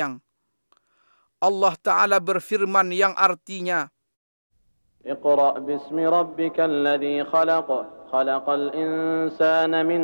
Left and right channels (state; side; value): inverted; both; correlation -1.00